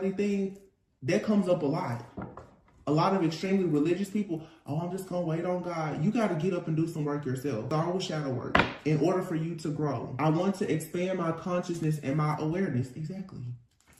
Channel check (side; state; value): both; identical; correlation 1.00